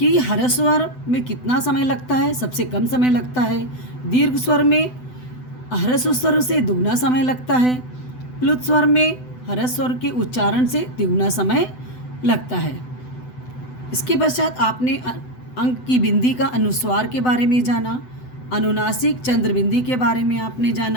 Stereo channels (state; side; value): late; right; 7.9 ms